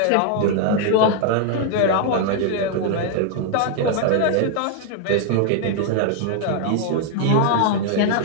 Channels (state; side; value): different; both; correlation 0.00